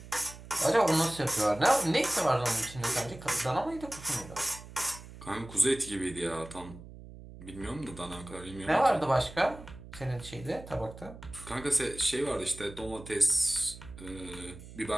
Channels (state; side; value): noise; right; hum, 16 dB below the sound